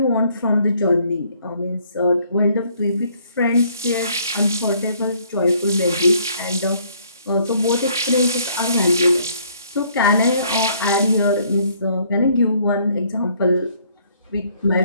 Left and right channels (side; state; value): both; inverted; correlation -0.64